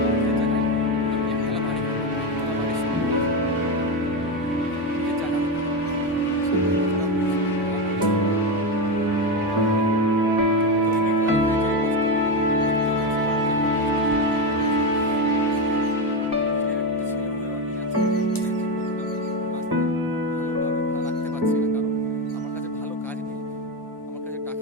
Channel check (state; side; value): normal; both; correlation 0.13